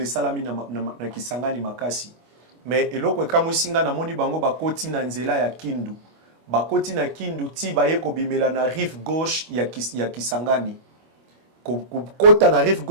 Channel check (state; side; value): late; left; 25 ms